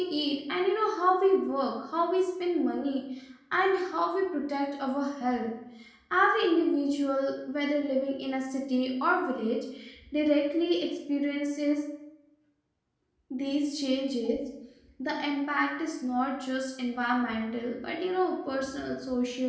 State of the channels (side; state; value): both; identical; correlation 1.00